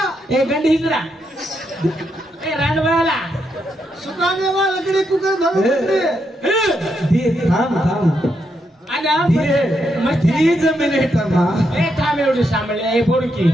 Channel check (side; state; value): both; normal; correlation 0.81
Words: गंडी हिजरा ए रांडवाला सुखाने वाला लकड़ी कुकर धर थाम आना मस्ती जमीन तमा ए थाम एवढी सांभाळले ए